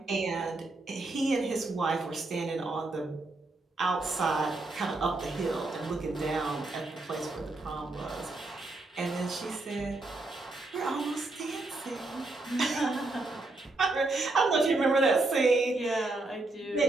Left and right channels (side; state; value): left; quieter; 3.1 dB